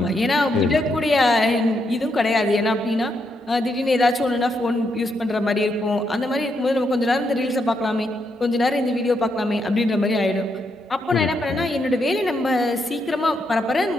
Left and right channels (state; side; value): normal; both; correlation 0.79